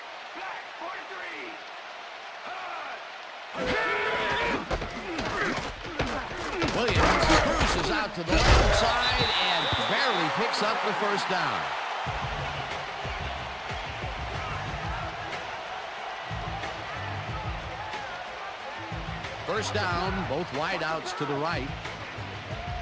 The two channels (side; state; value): both; identical; correlation 1.00